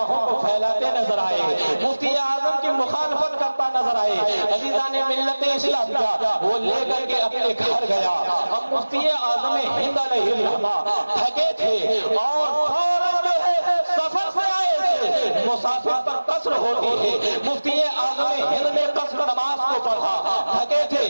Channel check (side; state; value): both; inverted; correlation -1.00